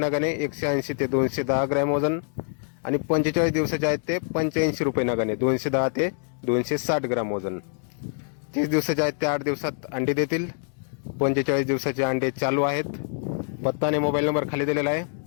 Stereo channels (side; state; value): right; silent; 61 dB below the other